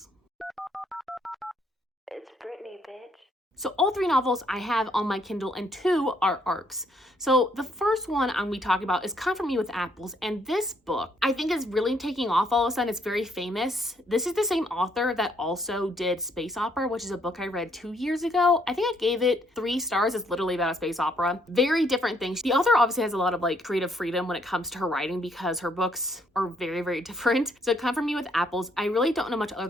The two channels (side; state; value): both; normal; correlation 0.69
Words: It's Brittany, bitch. So all 3 novels I have on my Kindle and 2 are ARCs. So the first one I'm going to be talking about is Comfort Me with Apples. And this book I think is really taking off all of a sudden. It's very famous. This is the same author that also did Space Opera, which is a book I read 2 years ago. I think I gave it 3 stars. It's literally about a space opera. Very different things. The author obviously has a lot of like creative freedom when it comes to her writing because her books are very, very different. So Comfort Me with Apples, I really don't know much other